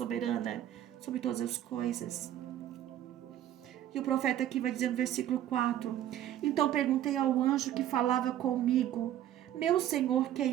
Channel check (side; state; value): left; quieter; 11.9 dB